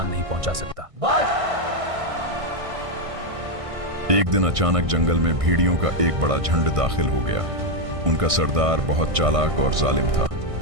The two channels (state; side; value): late; left; 1.6 ms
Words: नहीं पहुंचा सकता। एक दिन अचानक जंगल में भेड़ियों का एक बड़ा झुंड दाखिल हो गया। उनका सरदार बहुत चालाक और जालिम था।